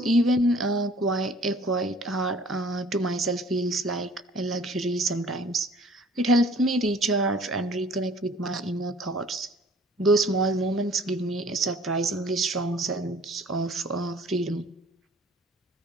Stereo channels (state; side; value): normal; both; correlation 0.52